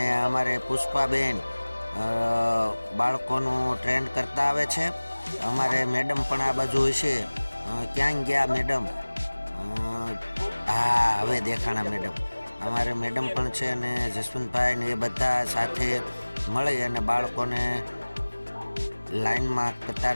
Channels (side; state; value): both; inverted; correlation -1.00